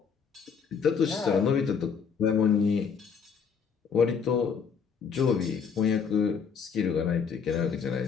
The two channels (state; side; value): quieter; right; 6.2 dB